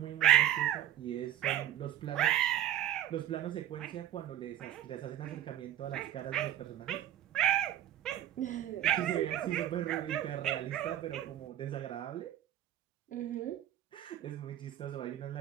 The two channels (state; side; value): quieter; left; 11.9 dB